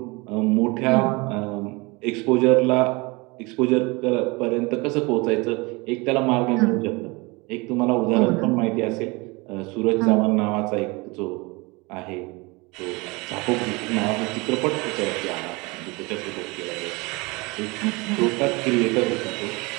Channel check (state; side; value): quieter; left; 25.8 dB